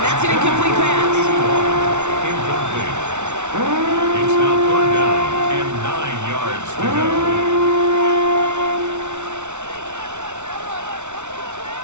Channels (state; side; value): late; left; 0.83 ms